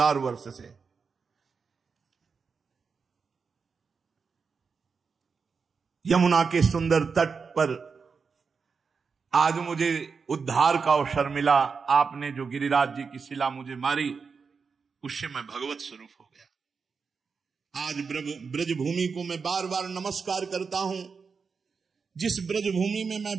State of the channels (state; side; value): quieter; left; 5.3 dB